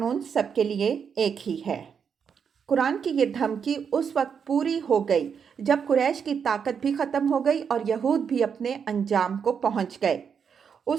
سب کے لیے ایک ہی ہے۔ قرآن کی یہ دھمکی اس وقت پوری ہو گئی جب قریش کی طاقت بھی ختم ہو گئی اور یہود بھی اپنے انجام کو پہنچ گئے۔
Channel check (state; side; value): quieter; left; 6.9 dB